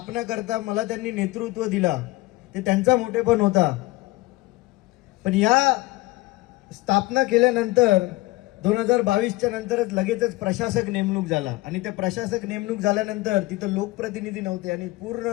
करता मला त्यांनी नेतृत्व दिला, ते त्यांचा मोठेपण होता। पण या स्थापना केल्यानंतर 2022च्या नंतरच लगेचच प्रशासक नेमणूक झाला आणि त्या प्रशासक नेमणूक झाल्यानंतर तिथं लोकप्रतिनिधी नव्हते आणि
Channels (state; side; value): quieter; right; 19.9 dB